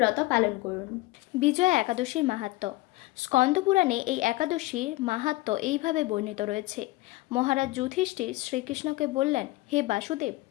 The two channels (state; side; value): quieter; right; 19.7 dB